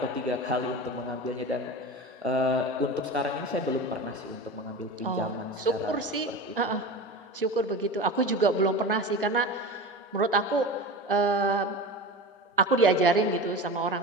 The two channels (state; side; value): normal; both; correlation 0.30